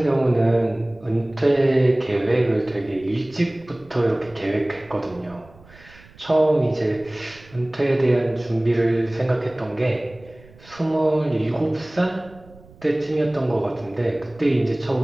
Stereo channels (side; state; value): right; noise; rumble, 24 dB below the sound